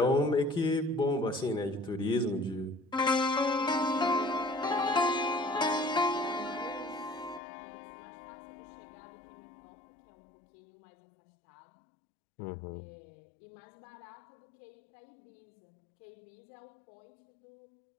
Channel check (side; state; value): right; drops out; at 7.4 s